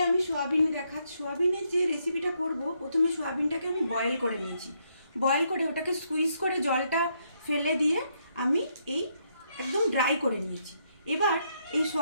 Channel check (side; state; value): both; inverted; correlation -0.75